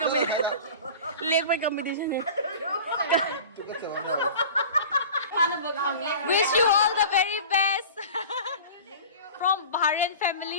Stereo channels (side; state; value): both; inverted; correlation -0.38